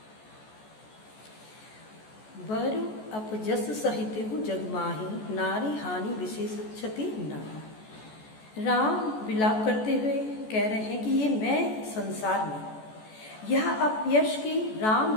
बरु अपजस सहित हूँ जगमाही, नारी हानि विशेष क्षति नारी। राम विलाप करते हुए कह रहे हैं कि ये मैं संसार में यह अपयश की राम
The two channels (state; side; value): late; right; 14 ms